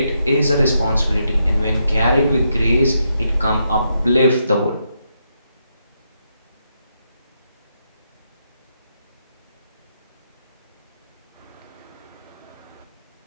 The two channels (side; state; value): both; inverted; correlation -0.81